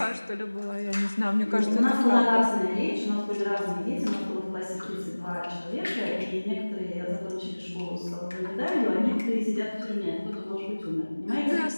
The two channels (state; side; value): inverted; both; correlation -1.00